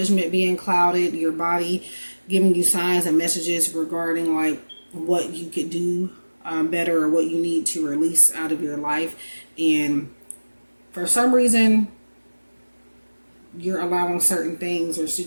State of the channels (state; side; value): inverted; both; correlation -1.00